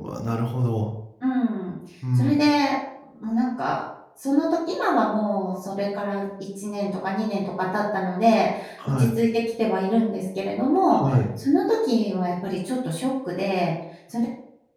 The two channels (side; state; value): both; identical; correlation 1.00